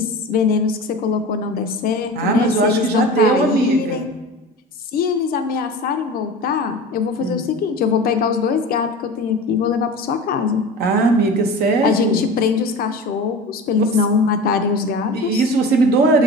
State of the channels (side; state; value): both; normal; correlation 0.33